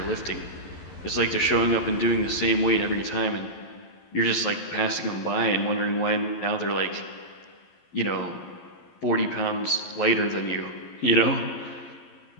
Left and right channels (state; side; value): late; right; 12 ms